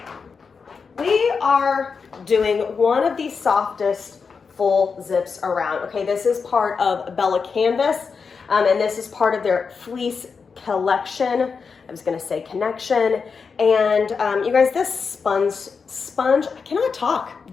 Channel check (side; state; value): right; quieter; 5.4 dB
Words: we are doing one of the softest full zips around. Okay, this is part of Bella Canvas, and this is part of their fleece collection. I was gonna say connection. And you guys, this sponge, I cannot talk,